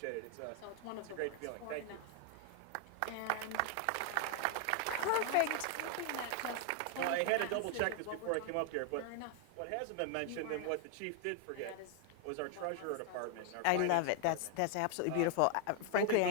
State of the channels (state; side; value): different; both; correlation 0.00